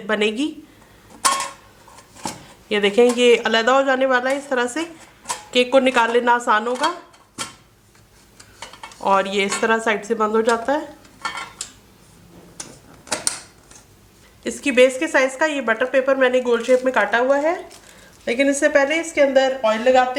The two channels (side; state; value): both; identical; correlation 1.00